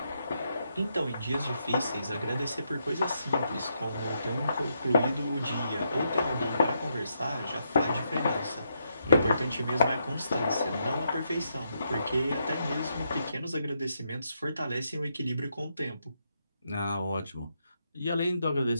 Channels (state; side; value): inverted; both; correlation -0.80